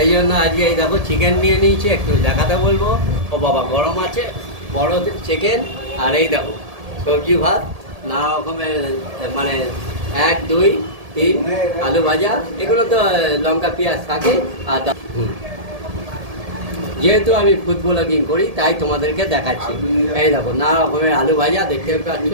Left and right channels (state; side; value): late; left; 1.7 ms